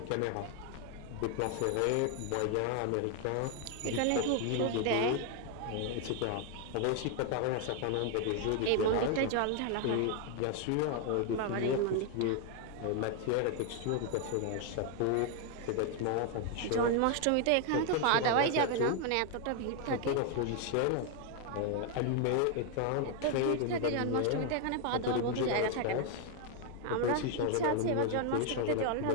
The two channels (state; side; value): different; both; correlation 0.01